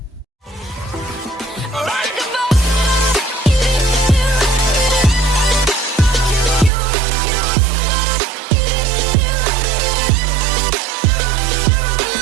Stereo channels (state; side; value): drops out; left; at 6.7 s